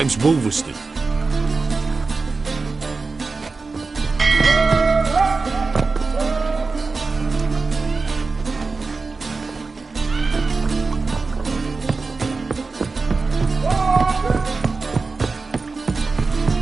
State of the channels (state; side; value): quieter; left; 4.1 dB